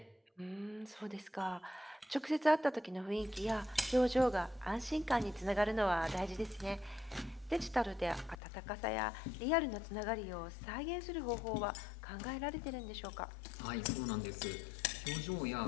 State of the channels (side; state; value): right; drops out; at 8.4 s